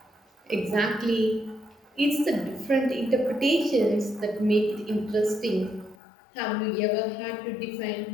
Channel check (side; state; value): right; drops out; at 6.0 s